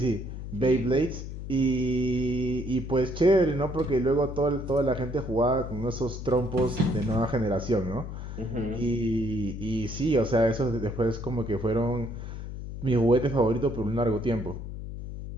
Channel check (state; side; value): noise; left; hum, 8 dB below the sound